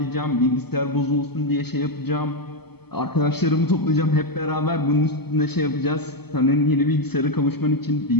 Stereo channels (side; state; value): right; late; 0.97 ms